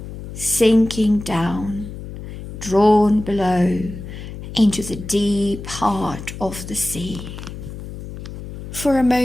sinking down, drawn below into the deep heart of the sea. For a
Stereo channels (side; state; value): left; noise; hum, 11 dB below the sound